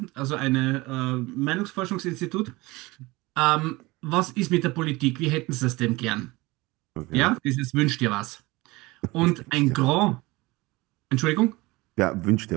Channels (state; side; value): quieter; left; 22.0 dB